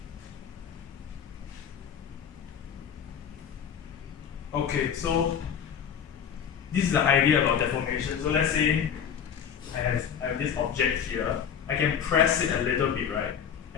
Okay, so this is the idea about deformation. So let's say I have this object here. I can press it a little bit, right?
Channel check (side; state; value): right; quieter; 7.9 dB